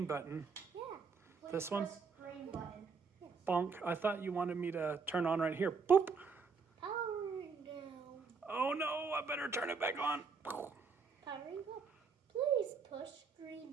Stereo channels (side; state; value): left; quieter; 5.1 dB